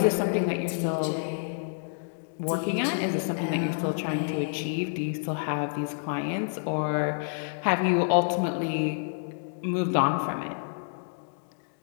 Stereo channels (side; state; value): right; silent; digital silence